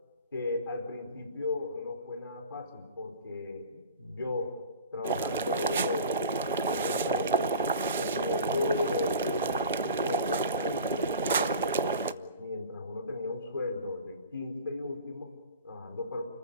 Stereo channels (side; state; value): both; inverted; correlation -0.40